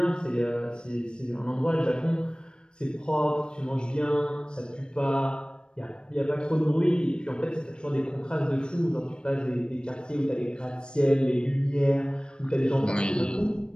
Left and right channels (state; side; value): late; right; 0.052 ms